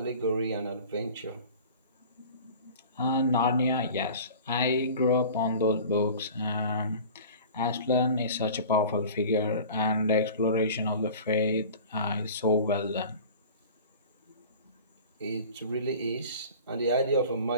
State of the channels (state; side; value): inverted; both; correlation -0.41